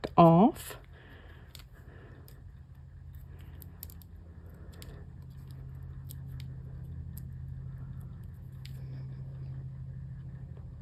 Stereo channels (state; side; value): identical; both; correlation 1.00